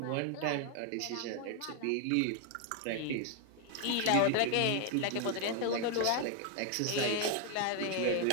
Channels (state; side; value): different; both; correlation 0.00